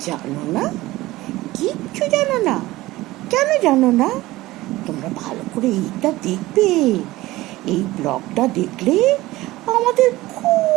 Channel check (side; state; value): left; quieter; 18.2 dB